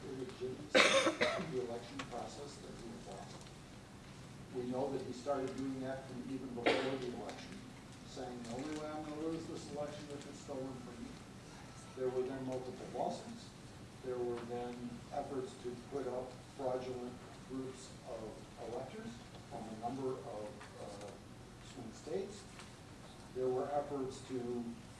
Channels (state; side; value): identical; both; correlation 1.00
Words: illegitimacy of the election process that he had lost. We know that he started doing that from even before the election, saying the only way I'm going to lose this election is if it's stolen from me. There were then multiple lawsuits. There were then efforts to put up fraudulent groups of electors from a number of swing states. There were efforts to